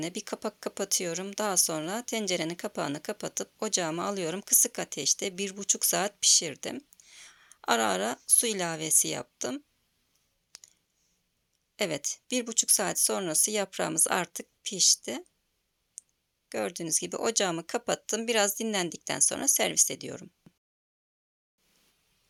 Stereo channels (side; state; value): both; identical; correlation 1.00